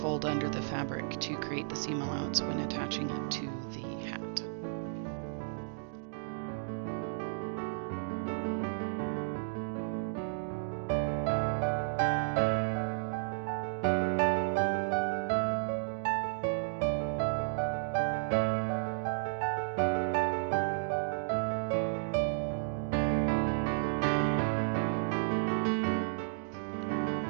fold under the fabric to create the seam allowance when attaching it to the hat.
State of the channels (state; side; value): silent; left; digital silence